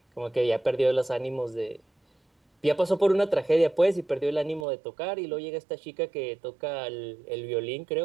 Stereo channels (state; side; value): drops out; left; at 4.7 s